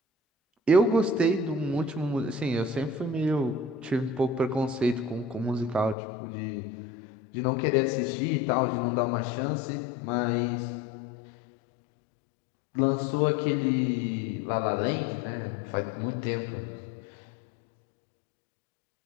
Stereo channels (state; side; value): drops out; right; at 6.0 s